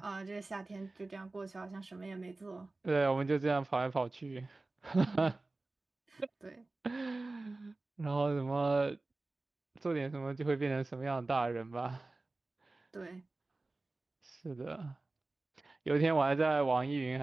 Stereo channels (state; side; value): quieter; left; 3.2 dB